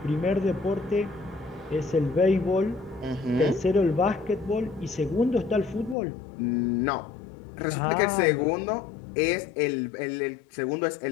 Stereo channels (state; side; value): drops out; right; at 6.0 s